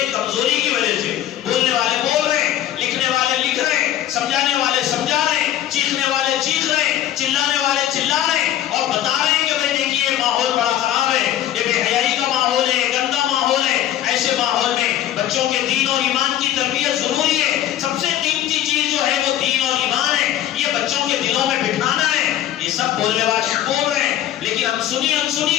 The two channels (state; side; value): quieter; right; 12.1 dB